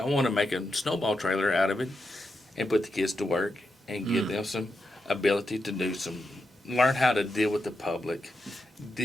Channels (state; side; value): normal; both; correlation 0.86